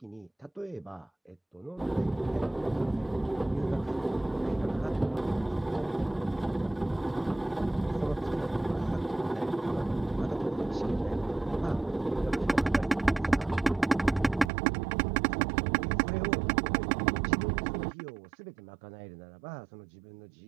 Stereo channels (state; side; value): drops out; left; at 14.5 s